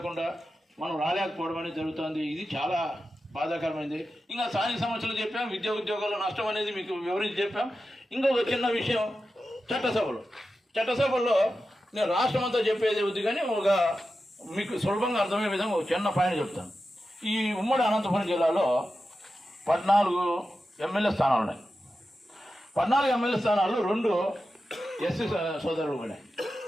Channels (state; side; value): normal; both; correlation 0.92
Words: మనం రాలేకపోవడం అనేది జరుగుతుంది. ఇది చాలా బాధాకరమైంది. ఇంకా స్థానిక సమస్యలు చెప్పాం, విద్యా ఉద్యోగాల నష్టం అనేది మీకు వివరించి చెప్పాం. ఇంకొక చిన్న విషయం, చట్టసభల్లో నేను రాష్ట్రం అంతా చెప్పేది వద్దు కానీ ఒక మీకు సులభంగా అర్థమయ్యే విధంగా ఒక చిన్న పాయింట్ చెప్తాను. ఈ ఉమ్మడి అనంతపురం జిల్లాలో 14 ఎమ్మెల్యే స్థానాలు ఉన్నాయి. 14 ఎమ్మెల్యే స్థానాలు 2 ఎస్సీ సోదరులు పోయినాయి.